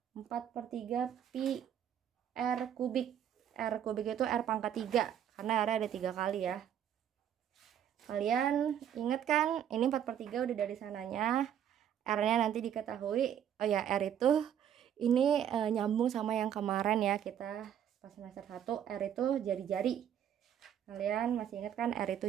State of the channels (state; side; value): quieter; left; 9.7 dB